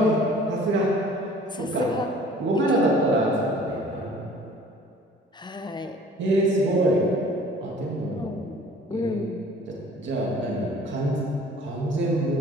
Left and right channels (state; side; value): normal; both; correlation 0.50